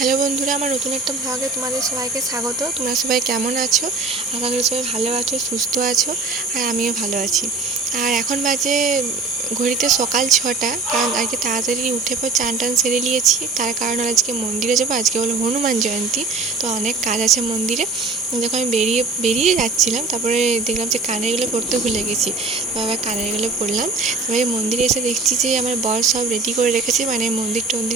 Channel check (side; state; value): left; quieter; 4.0 dB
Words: Hello বন্ধুরা, আমার নতুন একটা ব্লগে তোমাদের সবাইকে স্বাগত। তোমরা সবাই কেমন আছো? আশা করি সবাই ভালো আছো, সুস্থ আছো, আর আমিও ভালো আছি। আর এখন বাজে ঘড়িতে সকাল 6টা, কারণ আজকে তাড়াতাড়ি উঠে পর চান টান সেরে নিয়েছি। তার কারণ হলো আজকে মন্দিরে যাবো, আজকে হলো হনুমান জয়ন্তী, তো অনেক কাজ আছে মন্দিরে। যখন আমি বেরিয়ে যাচ্ছিলাম, তারপরে দেখলাম যে কানেরগুলো পরতে ভুলে গেছি, তো আবার কানেরগুলো পরলাম। তারপরে মন্দিরে এসে দেখছি যে আমার বর সব রেডি করে রেখেছে, মানে মন্দির